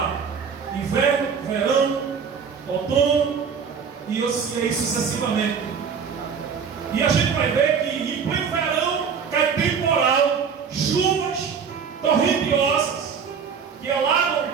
inverno, verão, outono e assim sucessivamente. E a gente vai ver que em pleno verão cai temporal, chuvas torrentiosas que alagam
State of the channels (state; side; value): quieter; left; 6.5 dB